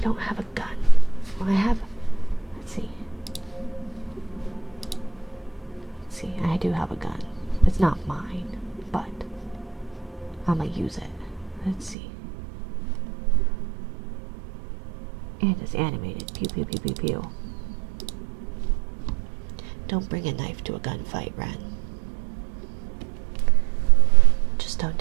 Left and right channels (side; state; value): left; drops out; at 12.0 s